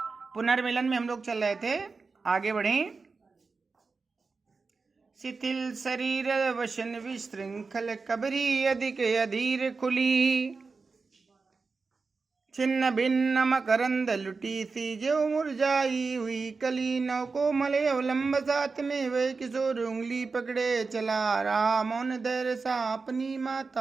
पुनर्मिलन में हम लोग चल रहे थे, आगे बढ़ें। शिथिल शरीर वशन विशृंखल कबरी अधिक अधीर खुली, छिन्न भिन्न मकरंद लुटी सी जो मुरझाई हुई कली। नौ कोमल अवलंब साथ में वह किशोर उंगली पकड़े चला रहा, मौन धैर्य सा अपनी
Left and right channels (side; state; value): left; quieter; 4.4 dB